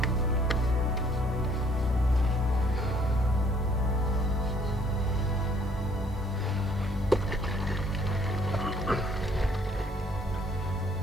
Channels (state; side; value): normal; both; correlation 0.62